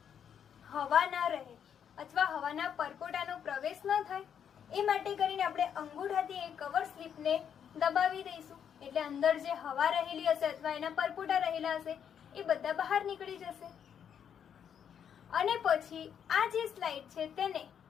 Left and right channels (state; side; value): quieter; right; 8.3 dB